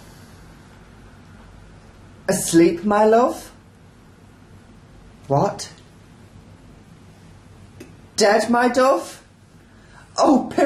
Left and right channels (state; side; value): identical; both; correlation 1.00